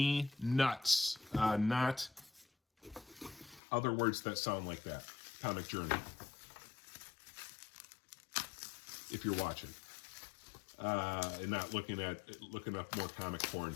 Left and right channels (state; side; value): drops out; right; at 3.6 s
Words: not other words that sound like that. Comic Journey, if you're watching, and not looking up more comic porn